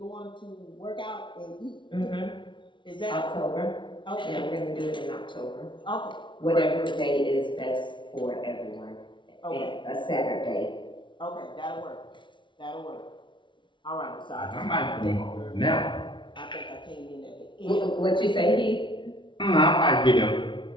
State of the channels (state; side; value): late; right; 0.24 ms